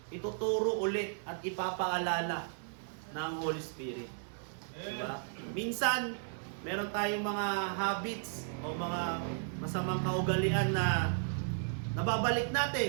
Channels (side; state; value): left; silent; digital silence